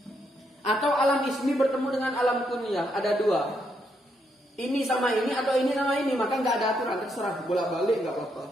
Atau alam ismi bertemu dengan alam kunyah, ada dua. Ini sama ini atau ini sama ini, maka nggak ada aturan, terserah bolak-balik nggak apa-apa.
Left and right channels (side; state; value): both; normal; correlation 0.77